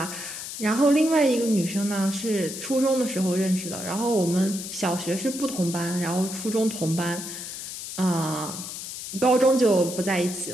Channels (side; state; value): left; noise; hiss, 8 dB below the sound